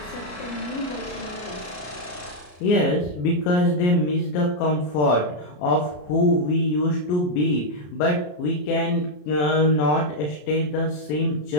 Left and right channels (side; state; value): right; late; 33 ms